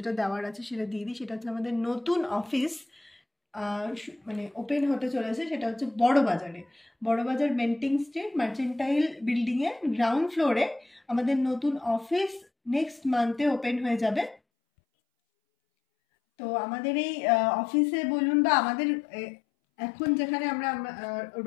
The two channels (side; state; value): right; drops out; at 14.4 s